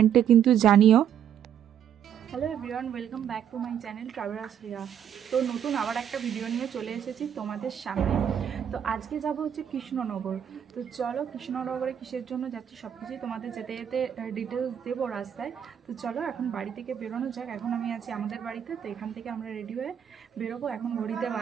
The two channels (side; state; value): left; quieter; 9.2 dB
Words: কিন্তু জানিও। Hello everyone, welcome back to my channel travellers Riya. তো নতুন আবার একটা ভিডিও নিয়ে চলে এসেছি তোমাদের সামনে। তো আজকে যাব হচ্ছে কৃষ্ণনগর। তো চলো কৃষ্ণনগরে কিসের জন্য যাচ্ছি সব কিছুই তোমাদের যেতে যেতে ডিটেলস দেবো রাস্তায়। তো চলো এখন বাড়ি থেকে বেরোনো যাক। এখন আমি আছি আমাদের বাড়িতে, তো এখান থেকে আমরা রেডি হয়ে বেরোবো। এখন ঘড়িতে